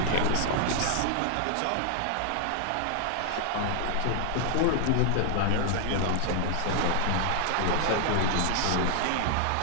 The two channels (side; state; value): both; different; correlation 0.00